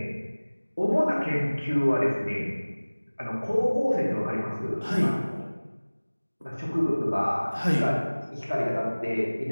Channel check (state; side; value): inverted; both; correlation -1.00